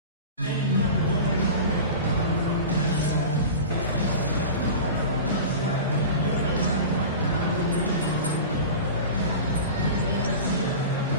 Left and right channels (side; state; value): both; inverted; correlation -0.32